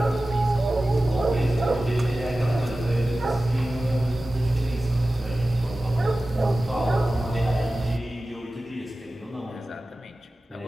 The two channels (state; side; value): normal; both; correlation 0.96